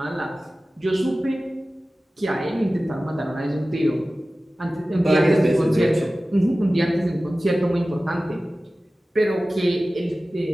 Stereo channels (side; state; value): both; normal; correlation 0.96